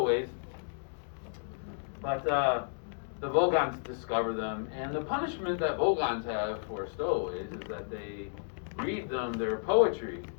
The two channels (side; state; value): right; silent; digital silence